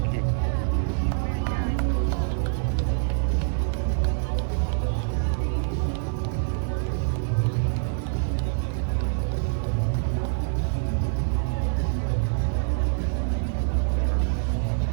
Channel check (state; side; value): silent; left; digital silence